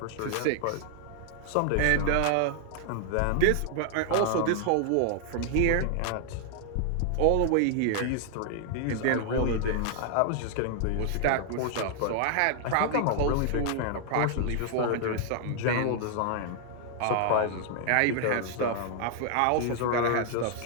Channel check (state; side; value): different; both; correlation 0.00